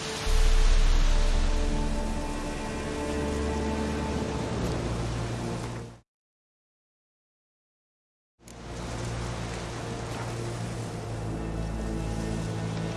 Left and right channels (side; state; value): both; identical; correlation 1.00